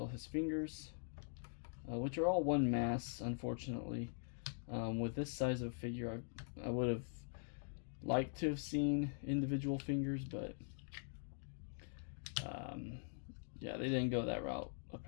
his fingers, which are all one mass, unfortunately. With this size of figure, I would have liked to have seen individual fingers, but yeah, they didn't go that route,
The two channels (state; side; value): silent; right; digital silence